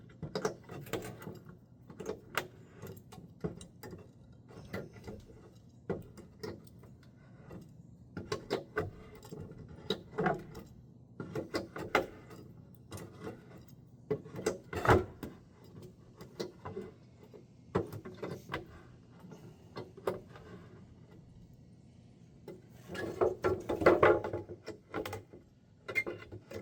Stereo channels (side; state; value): both; identical; correlation 1.00